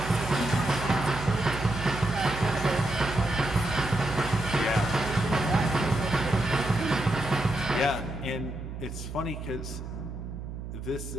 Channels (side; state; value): right; noise; hum, 8 dB below the sound